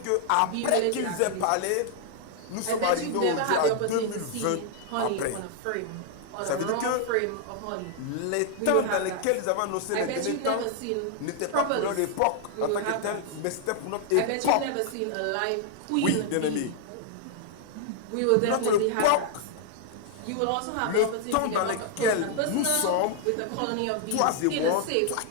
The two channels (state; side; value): different; both; correlation 0.00